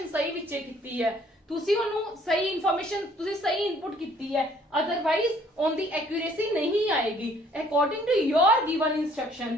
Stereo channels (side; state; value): both; normal; correlation 0.60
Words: सही विचे कीती है, तुसी ओनू सही इन्फॉर्मेशन, तुसी सही इनपुट कीती है, अदरवाइज ऑन दी एक्यूरेसी नहीं आएगी। According to your given